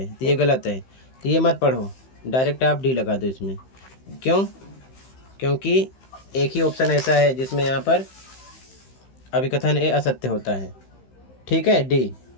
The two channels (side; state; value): right; late; 15 ms